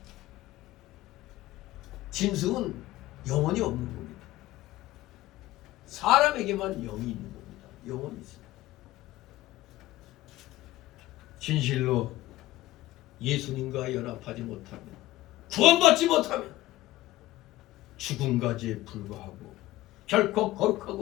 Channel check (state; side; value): quieter; right; 16.7 dB